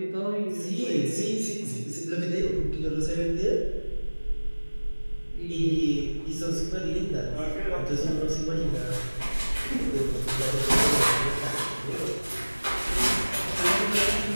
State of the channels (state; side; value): inverted; both; correlation -1.00